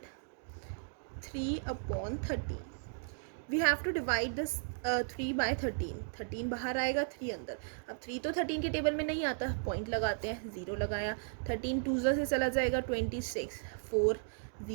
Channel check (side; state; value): left; silent; digital silence